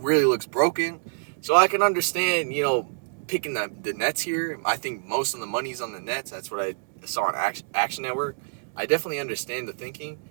really looks broken. So I can understand, picking the Nets here. I think most of the money's on the Nets. That's what I saw on Action Network. I definitely understand the thinking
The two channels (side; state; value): left; silent; digital silence